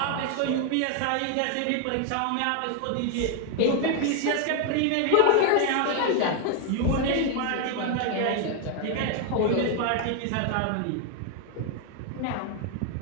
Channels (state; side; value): different; both; correlation 0.01